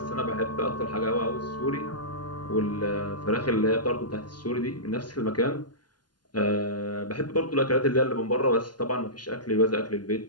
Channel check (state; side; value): late; right; 0.70 ms